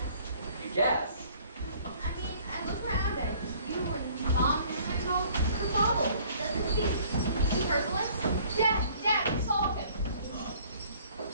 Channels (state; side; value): inverted; both; correlation -0.56